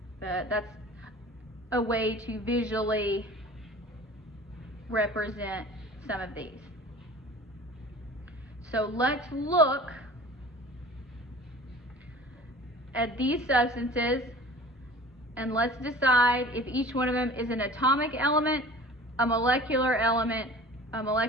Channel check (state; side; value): normal; both; correlation 0.43